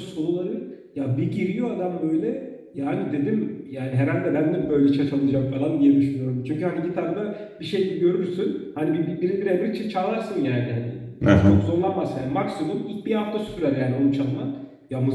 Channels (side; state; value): both; identical; correlation 1.00